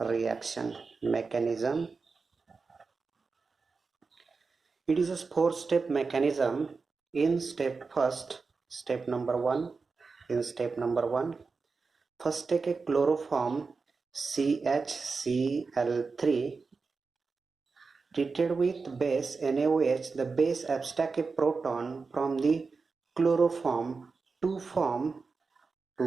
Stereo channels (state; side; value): quieter; left; 4.5 dB